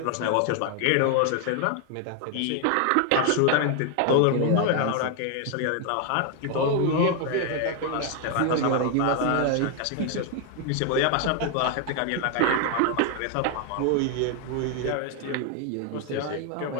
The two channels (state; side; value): different; both; correlation 0.01